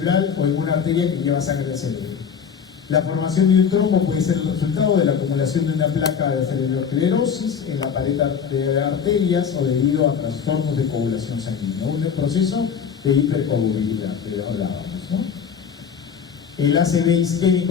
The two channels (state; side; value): quieter; right; 6.9 dB